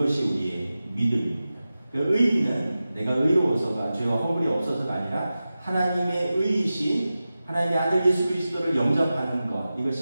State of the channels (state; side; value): inverted; both; correlation -0.94